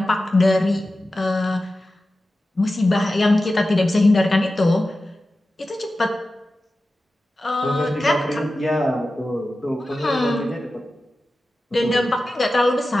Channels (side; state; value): both; normal; correlation 0.94